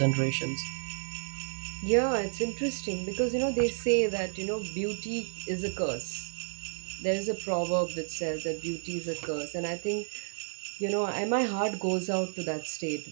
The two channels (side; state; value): left; silent; digital silence